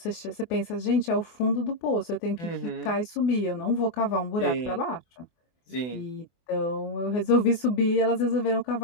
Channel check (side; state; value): right; late; 24 ms